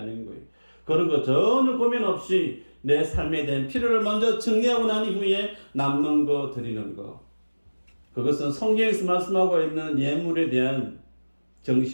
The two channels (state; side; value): inverted; both; correlation -1.00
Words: 거예요. 그런 거 전혀 고민 없이 내 삶에 대한 필요를 먼저 정리하고 난 이후에 남는 거 드리는 거. 그것은 성경에서 말씀하고 있는 예물에 대한